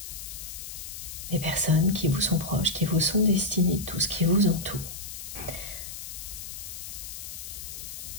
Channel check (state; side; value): noise; left; hiss, 9 dB below the sound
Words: les personnes qui vous sont proches, qui vous sont destinées, tout ce qui vous entoure.